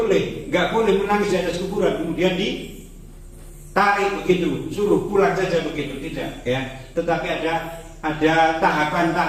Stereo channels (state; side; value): identical; both; correlation 1.00